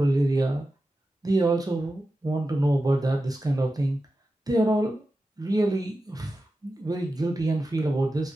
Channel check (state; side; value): normal; both; correlation 0.92